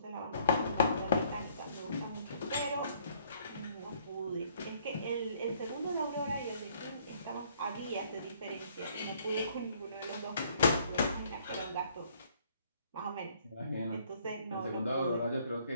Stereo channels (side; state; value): both; inverted; correlation -0.64